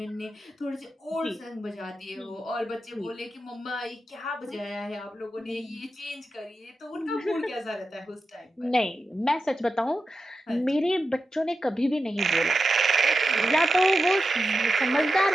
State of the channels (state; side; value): normal; both; correlation 0.90